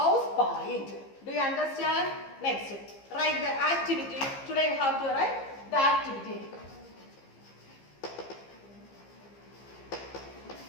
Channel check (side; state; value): right; late; 15 ms